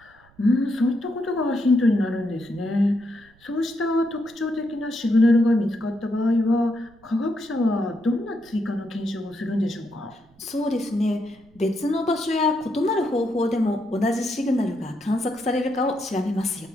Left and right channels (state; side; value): noise; right; rumble, 29 dB below the sound